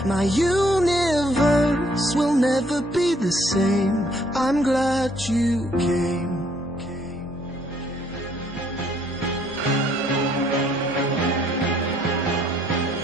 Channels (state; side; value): normal; both; correlation 0.66